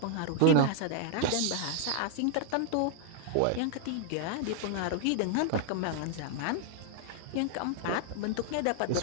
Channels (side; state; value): both; different; correlation 0.00